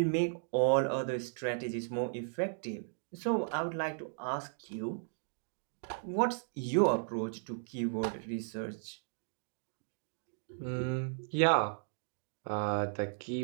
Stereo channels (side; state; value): left; silent; digital silence